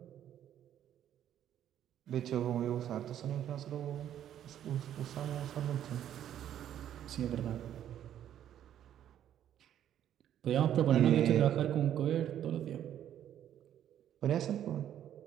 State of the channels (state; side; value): quieter; left; 10.7 dB